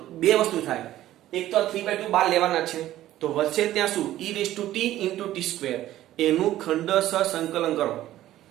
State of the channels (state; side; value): quieter; left; 13.9 dB